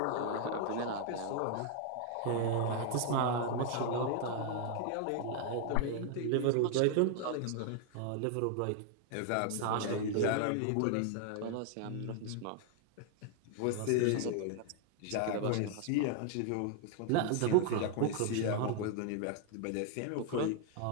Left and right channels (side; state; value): both; different; correlation 0.00